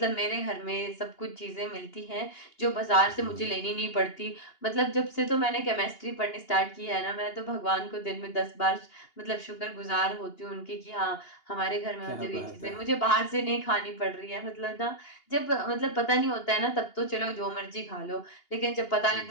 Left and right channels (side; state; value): right; late; 2.8 ms